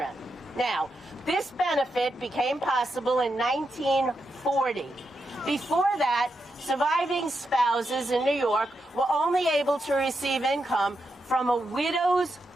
Now, this benefit became possible in 1940. Before that, surviving spouses in New York were only able to receive income from a widow's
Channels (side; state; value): both; normal; correlation 0.85